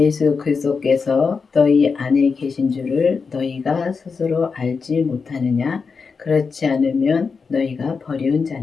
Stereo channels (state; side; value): quieter; right; 5.1 dB